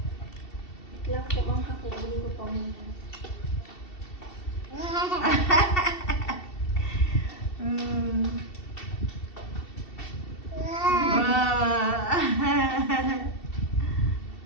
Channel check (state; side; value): late; right; 2.7 ms